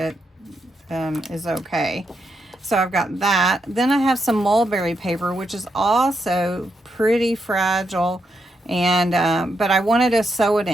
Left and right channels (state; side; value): normal; both; correlation 0.82